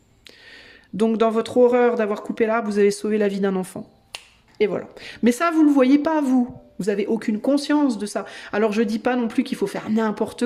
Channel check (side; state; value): both; identical; correlation 1.00